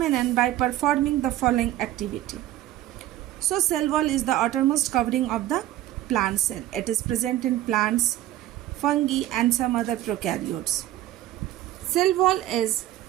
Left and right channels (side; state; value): left; quieter; 14.1 dB